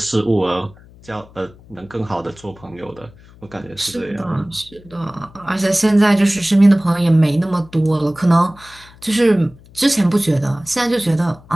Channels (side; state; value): left; noise; hum, 24 dB below the sound